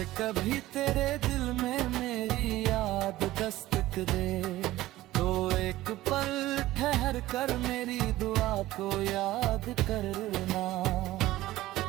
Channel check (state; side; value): quieter; left; 16.4 dB